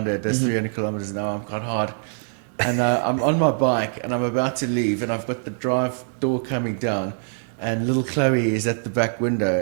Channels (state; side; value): silent; left; 63 dB below the other